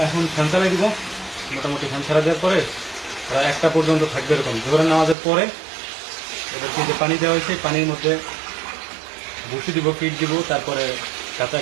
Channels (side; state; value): left; drops out; at 5.2 s